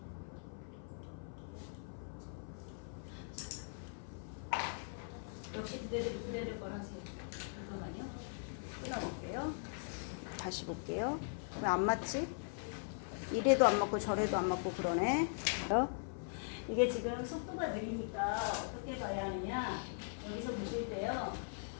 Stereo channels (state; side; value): silent; right; 51 dB below the other